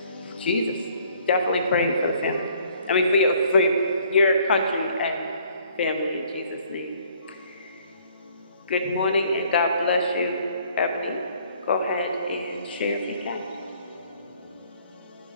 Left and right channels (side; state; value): both; inverted; correlation -0.60